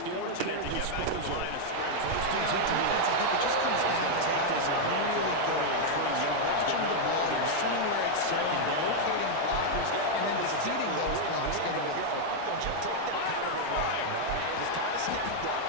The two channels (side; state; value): both; different; correlation 0.00